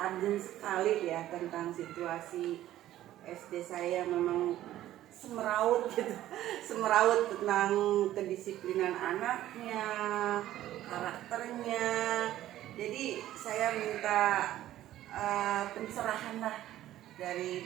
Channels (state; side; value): quieter; left; 13.5 dB